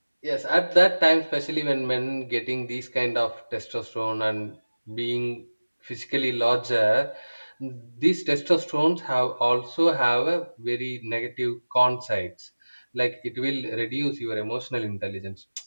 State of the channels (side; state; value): both; inverted; correlation -1.00